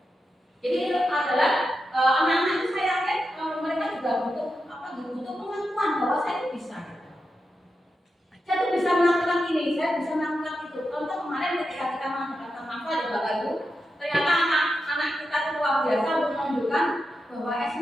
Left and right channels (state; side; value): normal; both; correlation 0.88